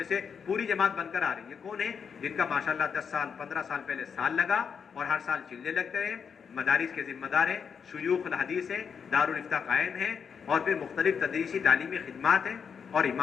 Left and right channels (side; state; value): right; quieter; 6.6 dB